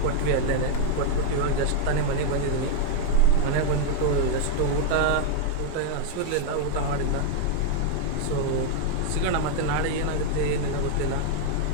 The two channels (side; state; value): both; different; correlation 0.00